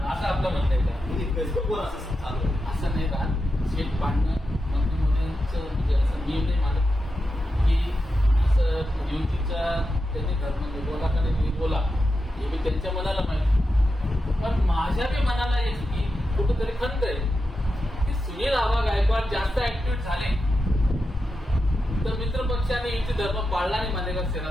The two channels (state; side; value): normal; both; correlation 0.89